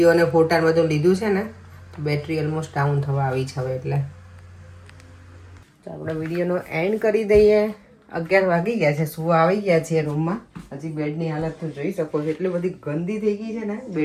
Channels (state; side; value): identical; both; correlation 1.00